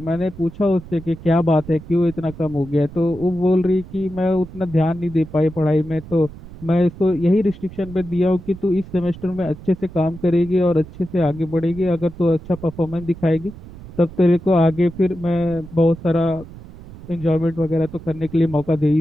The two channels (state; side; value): noise; right; rumble, 16 dB below the sound